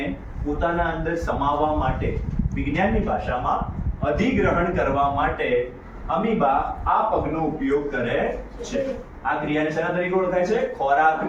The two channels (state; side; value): identical; both; correlation 1.00